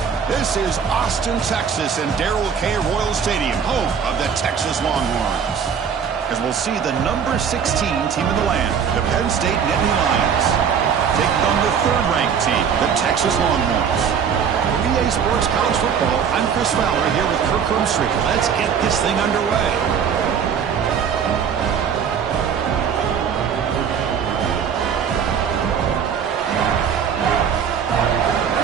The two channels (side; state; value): left; quieter; 7.3 dB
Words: This is Austin, Texas, and Darrell K. Royal Stadium, home of the Texas Longhorns. As we'll see the number 16 team in the land, the Penn State Nittany Lions, taking on the third-ranked team, the Texas Longhorns. For EA Sports College Football, I'm Chris Fowler here with Kirk Hermstreet. Let's get this thing underway.